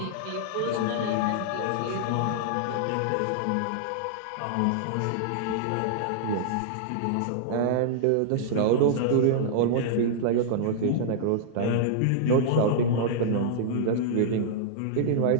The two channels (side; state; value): both; different; correlation -0.01